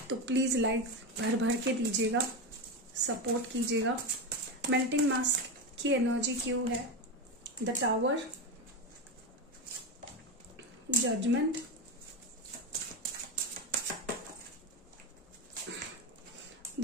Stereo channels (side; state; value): both; normal; correlation 0.14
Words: तो प्लीज़ लाइक भर भर के दीजिएगा, सपोर्ट कीजिएगा। मेल्टिंग मास्क की एनर्जी क्यों है, the tower, judgement,